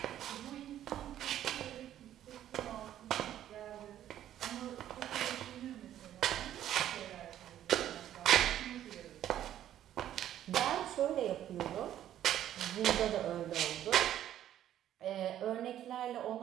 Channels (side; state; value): left; quieter; 11.6 dB